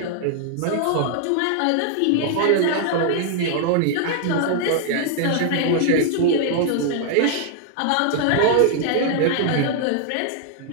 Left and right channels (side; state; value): both; different; correlation 0.00